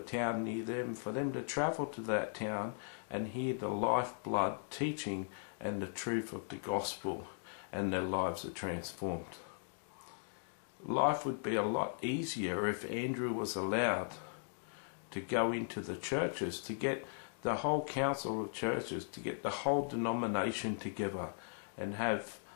near them, for them to travel to that town and hear the lifeblood teaching and the truth of the gospel, and their lives are transformed. Life would be a lot easier if Andrew was allowed to go into the churches, to get the whole council of churches, to get the whole denomination together and have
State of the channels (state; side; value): silent; right; digital silence